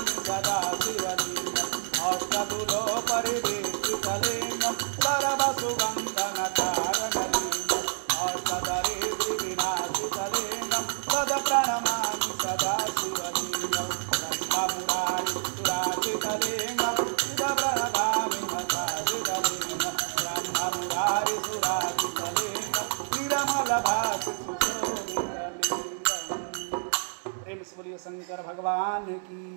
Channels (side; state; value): left; silent; digital silence